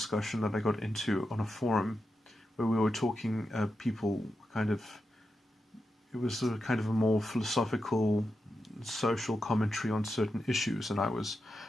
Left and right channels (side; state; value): both; normal; correlation 0.88